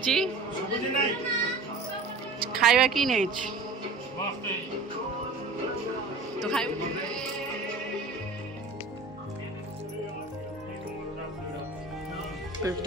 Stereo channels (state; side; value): quieter; left; 3.7 dB